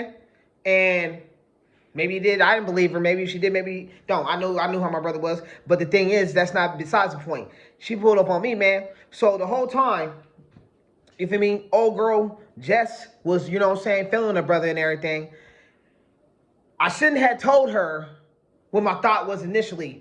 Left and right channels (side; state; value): both; identical; correlation 1.00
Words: And maybe he did. I didn't believe her. Maybe she did. Maybe don't. I knew how my brother was. But the thing is, that's not besides the point. She pulled up on me, man. So the whole time, you feel me? Old girl Jess was, you know what I'm saying, feeling her brother and everything. I shouldn't have told her what my thought was